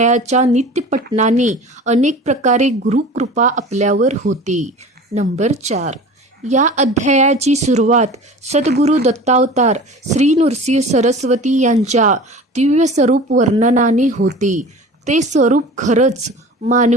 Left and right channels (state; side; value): normal; both; correlation 0.39